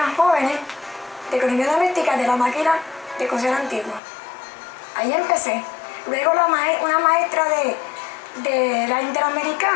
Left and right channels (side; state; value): right; drops out; at 4.0 s